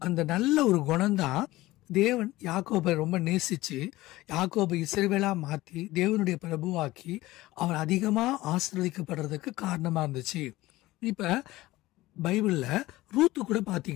அந்த நல்ல ஒரு குணம்தான் தேவன் யாக்கோபை ரொம்ப நேசிச்சு யாக்கோபை இஸ்ரவேலா மாத்தி தேவனுடைய பிரபுவாக்கி அவன் அதிகமா ஆசீர்வதிக்கப்படுறதுக்கு காரணமா இருந்துச்சு. இப்ப பைபிள்ல ரூத்து கூட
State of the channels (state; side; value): quieter; right; 18.0 dB